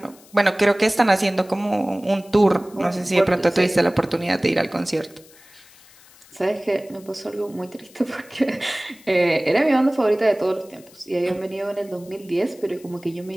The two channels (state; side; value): noise; left; hiss, 25 dB below the sound